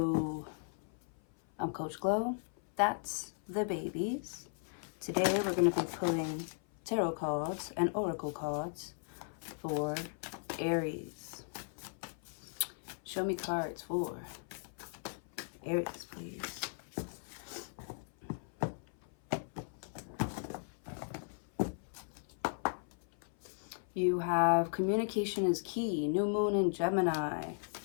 I'm Coach Glow. That's the babies. Today we're going to be pulling tarot cards and oracle cards for Aries. Show me cards for Aries, please. You have communication is key. New moon in Gemini.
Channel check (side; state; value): right; silent; 53 dB below the other